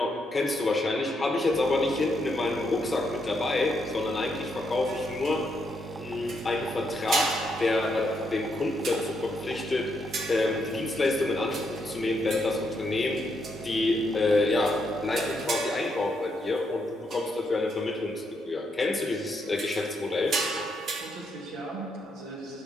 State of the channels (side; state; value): both; normal; correlation 0.78